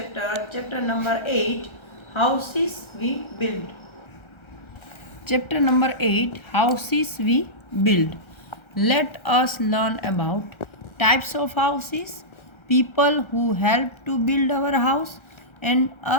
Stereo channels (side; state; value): right; late; 1.3 ms